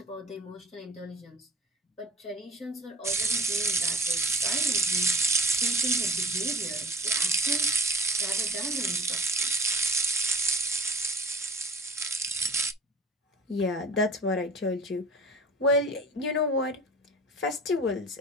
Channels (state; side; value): normal; both; correlation 0.43